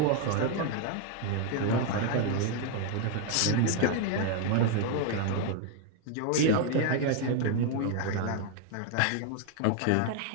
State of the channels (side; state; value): both; different; correlation 0.00